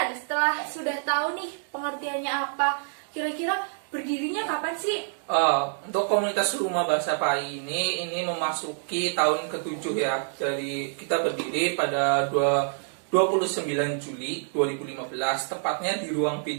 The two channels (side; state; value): left; silent; digital silence